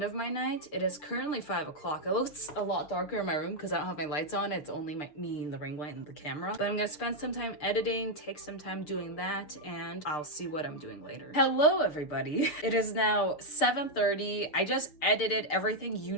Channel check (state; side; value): late; right; 6.7 ms